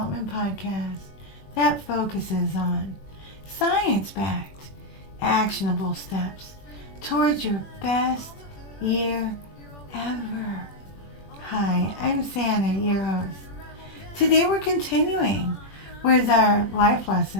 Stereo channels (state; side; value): late; right; 21 ms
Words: podcast that focuses on science-backed, actionable steps towards your best year ever. Hi, I'm Santa, your host. Today we're continuing with our life